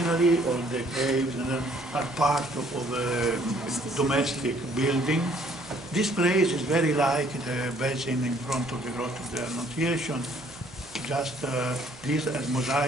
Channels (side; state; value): right; noise; hum, 23 dB below the sound